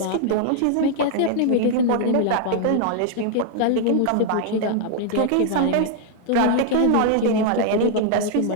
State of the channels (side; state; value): both; different; correlation 0.00